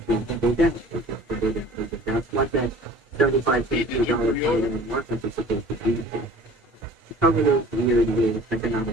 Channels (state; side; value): normal; both; correlation 0.46